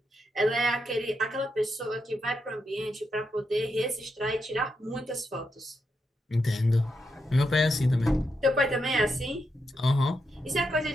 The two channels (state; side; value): normal; both; correlation 0.84